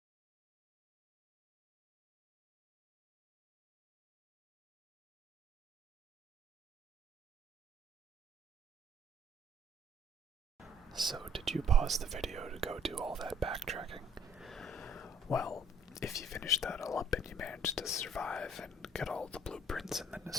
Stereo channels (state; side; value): normal; both; correlation 0.60